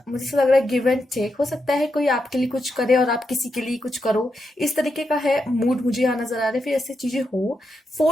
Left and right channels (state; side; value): normal; both; correlation 0.84